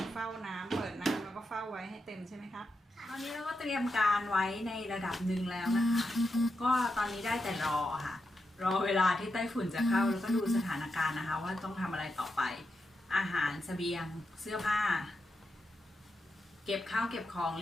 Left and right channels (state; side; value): normal; both; correlation 0.86